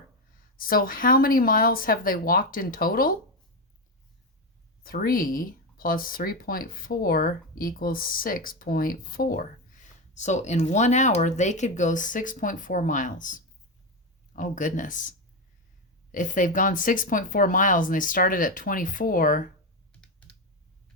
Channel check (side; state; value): both; normal; correlation 0.11